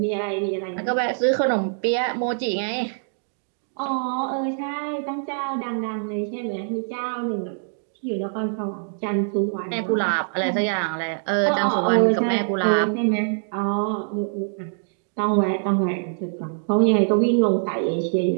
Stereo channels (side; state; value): left; silent; digital silence